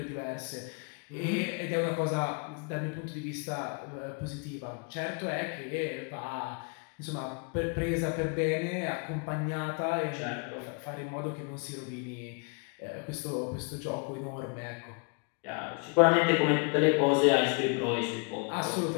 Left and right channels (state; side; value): quieter; right; 34.8 dB